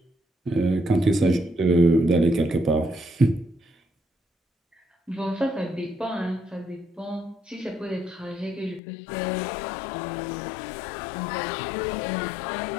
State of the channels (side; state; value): right; drops out; at 8.8 s